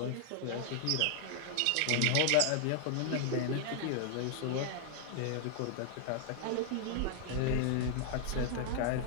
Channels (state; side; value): different; both; correlation 0.00